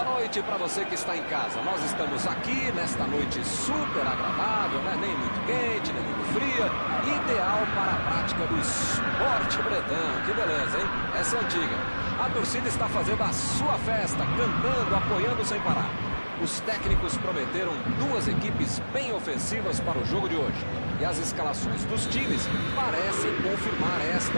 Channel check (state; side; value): inverted; both; correlation -1.00